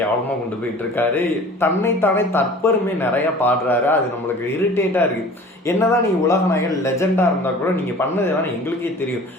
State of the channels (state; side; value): normal; both; correlation 0.44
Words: கொண்டு போயிட்டு இருக்காரு. தன்னைத்தானே தற்பெருமை நிறையா பாடுறாரு. அது நம்மளுக்கு இரிட்டேட்டாக இருக்குது. என்னதான் நீங்கள் உலக நாயகன் லெஜெண்டாக இருந்தால் கூட நீங்கள் பண்ணதெல்லாம் எங்களுக்கே தெரியும்.